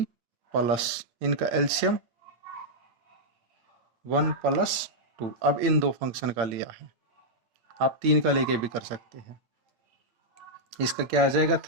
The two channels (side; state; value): left; late; 8.8 ms